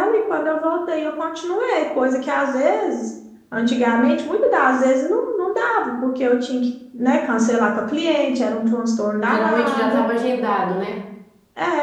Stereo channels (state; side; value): identical; both; correlation 1.00